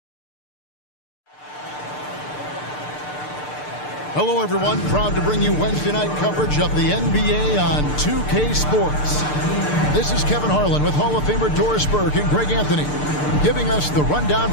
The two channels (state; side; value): late; right; 6.7 ms